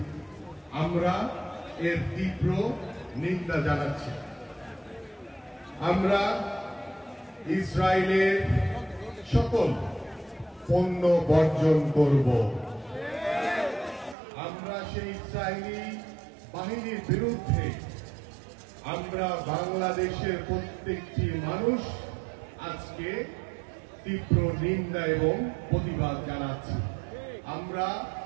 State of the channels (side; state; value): left; drops out; at 14.2 s